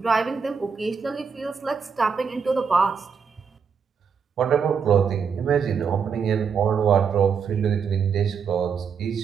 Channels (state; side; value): quieter; left; 6.3 dB